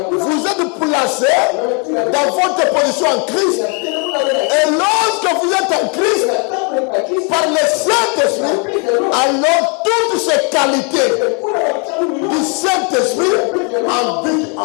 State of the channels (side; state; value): right; quieter; 35.6 dB